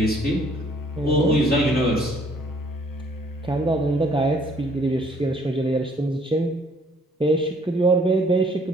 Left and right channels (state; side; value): normal; both; correlation 0.61